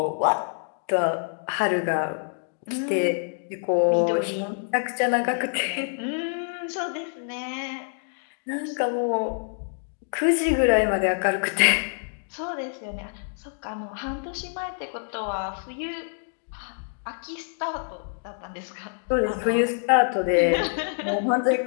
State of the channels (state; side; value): silent; right; digital silence